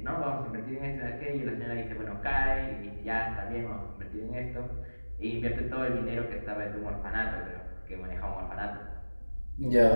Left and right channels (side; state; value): both; inverted; correlation -1.00